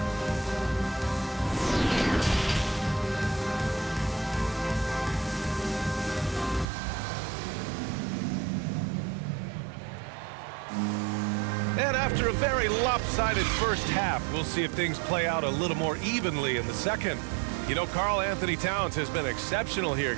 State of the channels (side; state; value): left; drops out; at 6.7 s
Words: And after a very lopsided first half, we'll see if things play out a little more evenly in the second. You know, Karl-Anthony Towns has been exceptional here,